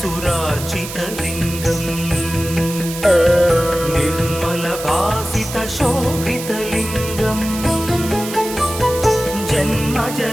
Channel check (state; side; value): noise; right; hiss, 10 dB below the sound